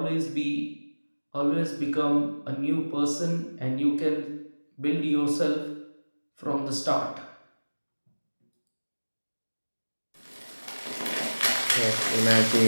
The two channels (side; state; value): both; inverted; correlation -1.00